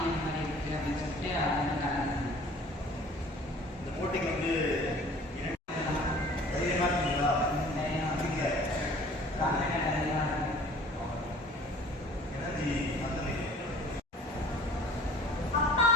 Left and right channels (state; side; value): normal; both; correlation 0.48